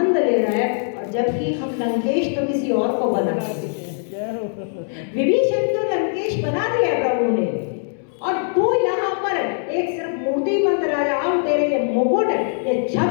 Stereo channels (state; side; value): silent; right; 65 dB below the other